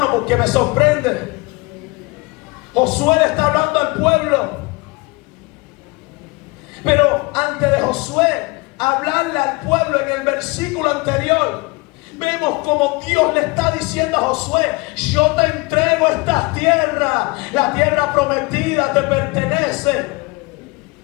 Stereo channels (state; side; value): quieter; right; 26.2 dB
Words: porque me sorprende. Josué le está hablando al pueblo, pero antes de Josué hablarle al pueblo, en el versículo anterior vemos como Dios le está diciendo a Josué: yo te entrego esta tierra, la tierra prometida te pertenece.